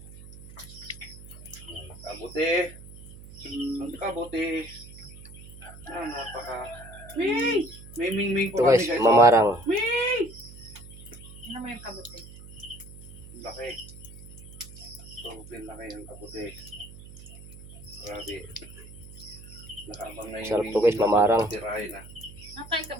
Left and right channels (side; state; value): right; noise; hum, 16 dB below the sound